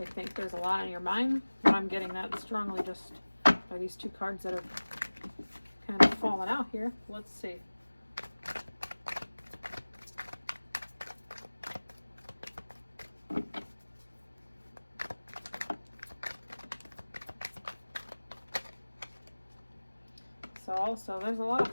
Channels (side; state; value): both; inverted; correlation -1.00